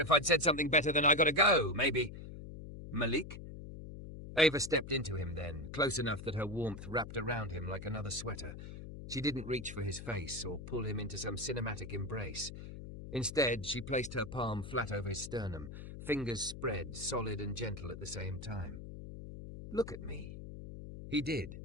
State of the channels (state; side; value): noise; left; hum, 11 dB below the sound